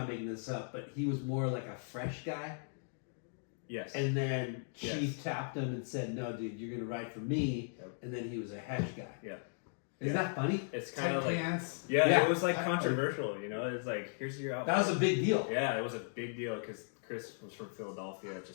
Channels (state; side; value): silent; right; digital silence